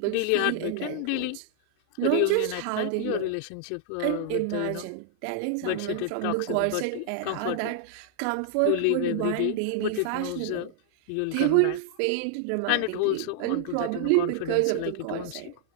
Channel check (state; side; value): different; both; correlation -0.01